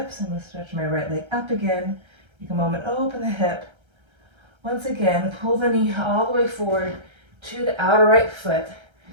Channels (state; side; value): late; left; 1.3 ms